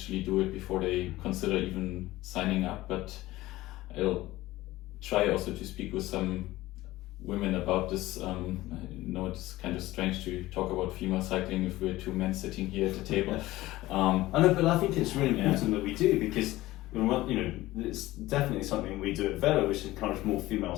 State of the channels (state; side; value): quieter; right; 17.4 dB